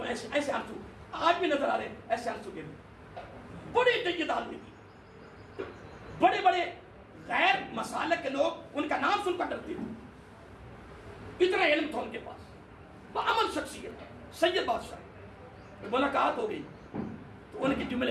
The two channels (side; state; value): both; identical; correlation 1.00